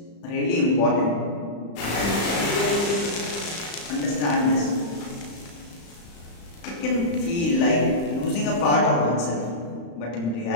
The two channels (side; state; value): right; late; 35 ms